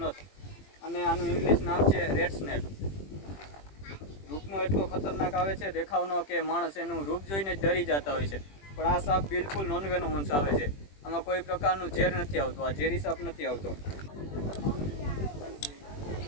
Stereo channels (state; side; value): late; right; 21 ms